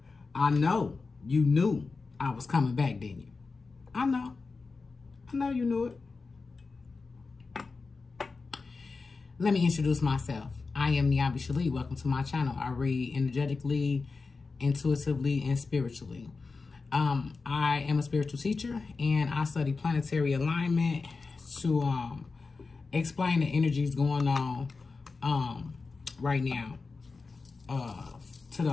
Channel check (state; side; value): quieter; right; 4.2 dB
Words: I know you knew I was coming back, didn't you? I know you knew it. Let me introduce myself. I am NiambiShele. Welcome to my channel. I read energetically, intuitively, and spiritually. I am a spiritual teacher, and I study planetary alignment to explain the energies going on right now to